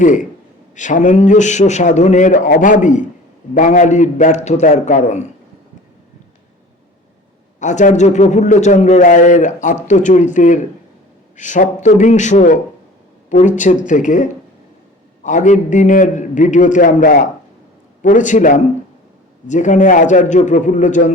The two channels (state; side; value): normal; both; correlation 0.43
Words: সামঞ্জস্য সাধনের অভাবই বাঙালির ব্যর্থতার কারণ। আচার্য প্রফুল্লচন্দ্র রায়ের আত্মচরিতের সপ্তবিংশ পরিচ্ছেদ থেকে আগের দিনের ভিডিওতে আমরা পড়েছিলাম, যেখানে আচার্য